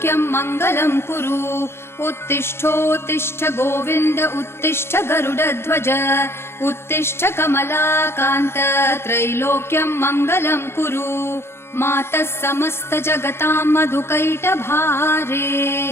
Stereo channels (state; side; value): late; right; 0.12 ms